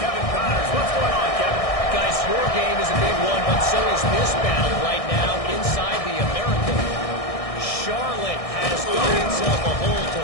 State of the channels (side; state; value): right; late; 1.6 ms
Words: Kevin Connors. What's going on, Kevin? Guys, your game is a big one, but so is this battle right now inside the American. Charlotte has dug itself a hole